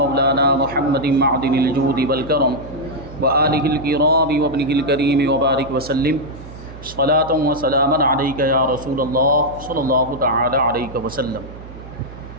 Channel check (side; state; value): right; noise; hum, 15 dB below the sound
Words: محمد معدن الجود والکرم وآلہ الکرام وابنہ الکریم وبارک وسلم صلاۃ و سلاما علیک یا رسول اللہ صلی اللہ تعالی علیہ وسلم۔